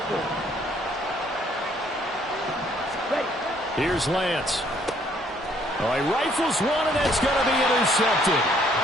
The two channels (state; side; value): normal; both; correlation 0.65